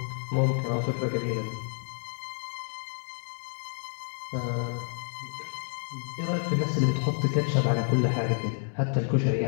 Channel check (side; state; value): right; silent; digital silence